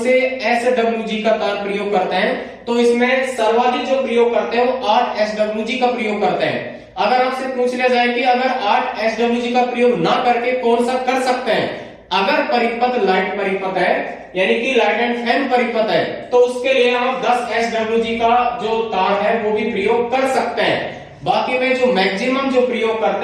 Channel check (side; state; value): both; identical; correlation 1.00